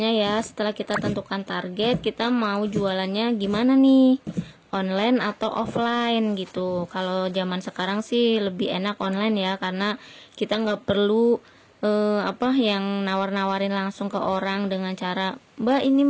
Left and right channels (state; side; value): identical; both; correlation 1.00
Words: ya, setelah kita tentukan target, kita mau jualannya gimana nih, online atau offline gitu. Kalau zaman sekarang sih lebih enak online ya, karena kita nggak perlu yang nawar-nawarin langsung ke orang dengan cara, mbak ini